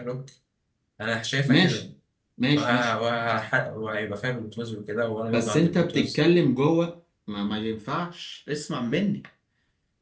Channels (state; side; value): identical; both; correlation 1.00